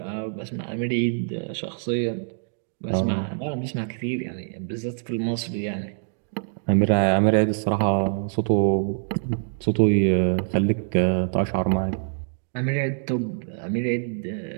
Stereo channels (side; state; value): left; silent; digital silence